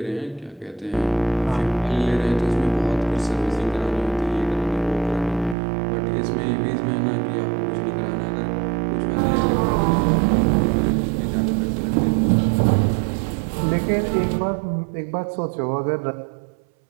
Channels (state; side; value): drops out; left; at 5.6 s